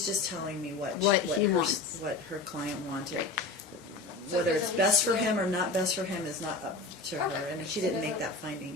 just telling me what What he wants. what her client wanted. So Whether does it's best for Alicia- him or not best for him is not up to her, Okay. and she So didn't does make it- that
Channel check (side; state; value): right; quieter; 3.6 dB